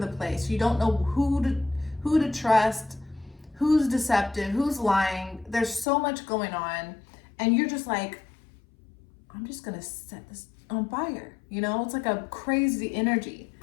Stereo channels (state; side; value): drops out; right; at 5.9 s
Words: place. You don't know who to trust, who's deceptive, who's lying. There's so much going on, and you're just like, I'm just gonna set this on fire. You know, it's like a crazy energy.